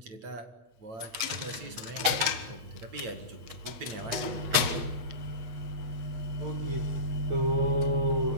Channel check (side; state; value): left; late; 8.2 ms